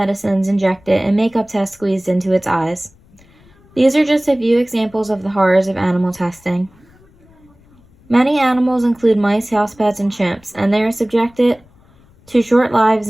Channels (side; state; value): left; noise; rumble, 29 dB below the sound